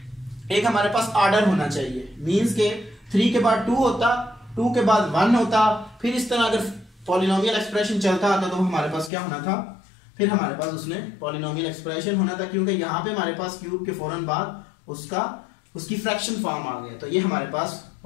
एक हमारे पास ऑर्डर होना चाहिए। मींस के 3 के बाद 2 होता, 2 के बाद 1 होता, फिर इस तरह अगर पॉलिनोमियल एक्सप्रेशन चलता आता तो हमारे पास क्या होना था, फिर हमारे पास उसने पॉलिनोमियल एक्सप्रेशन होना था। क्योंकि यहाँ पे हमारे पास क्यूब के फौरन बाद उसकी फ्रैक्शन फॉर्म आ गया, तो ये हमारे पास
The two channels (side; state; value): right; drops out; at 9.1 s